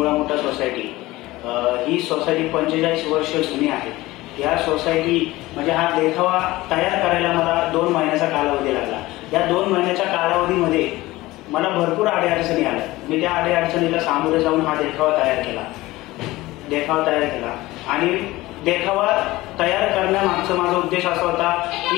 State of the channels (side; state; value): right; quieter; 18.7 dB